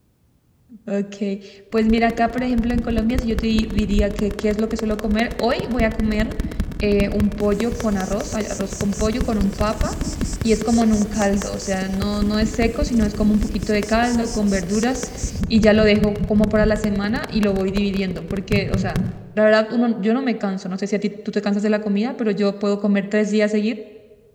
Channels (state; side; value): identical; both; correlation 1.00